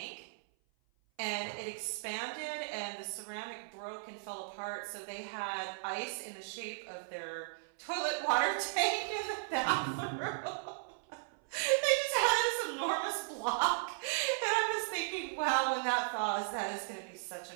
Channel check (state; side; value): silent; left; 54 dB below the other